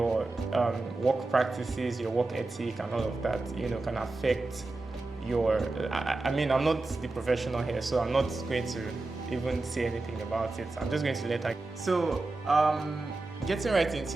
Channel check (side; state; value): left; quieter; 3.2 dB